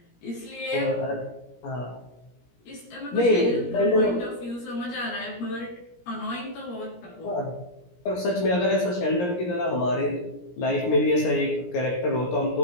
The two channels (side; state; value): right; late; 17 ms